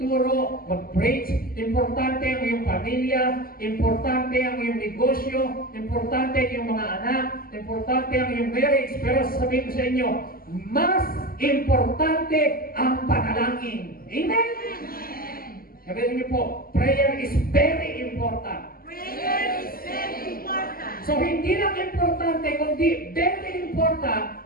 mag-preach, importante ang iyong pamilya, importante ang iyong negosyo, importante ang iyong mga anak, importante ang iyong marriage. Pero sasabihin ko sa inyo, mas importante ang panalangin. Amen? Sabihin niyo po, prayer is very important. Prayer is very important. So hindi lang importante, kundi very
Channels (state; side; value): late; right; 0.42 ms